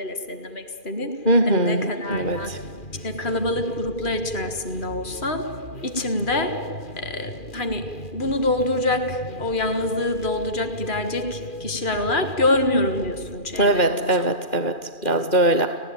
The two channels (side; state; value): right; late; 2.4 ms